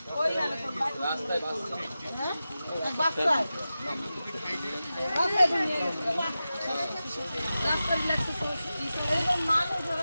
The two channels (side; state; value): both; inverted; correlation -0.93